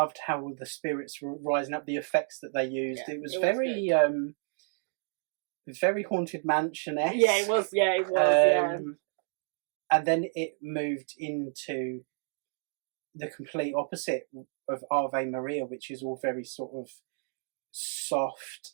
how the spirits were rising up, the effects that they used. Yeah, it was very Haunted Mansion-esque. Yeah, it was. Yeah, it was. And then it moved into the complete opposite of Ave Maria, which is all very sort of soft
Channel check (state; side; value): silent; left; 57 dB below the other